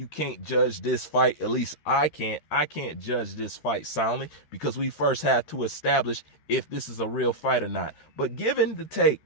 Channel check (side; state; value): right; late; 13 ms